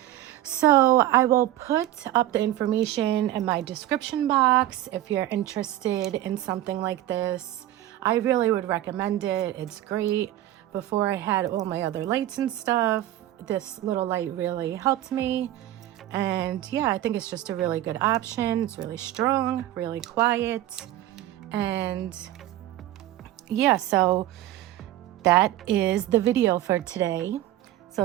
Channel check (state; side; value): quieter; left; 14.0 dB